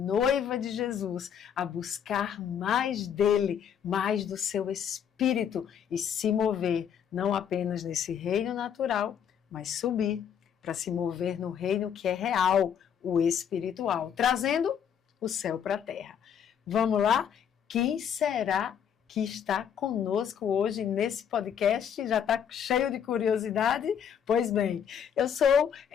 de Jesus a buscar mais dele, mais do seu Espírito e se mover não apenas nesse reino natural, mas subir para se mover no reino que é real, o espiritual, trazendo o céu para a terra. Vamos lá? Quem será que está conosco hoje nesse podcast? Já está cheio de curiosidade? Pois bem, eu sou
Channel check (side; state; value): right; quieter; 8.3 dB